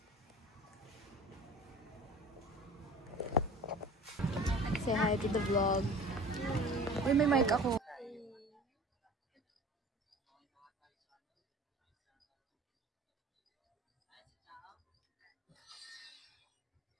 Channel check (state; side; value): normal; both; correlation 0.42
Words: Say hi to the vlog. Uy, may mic ako.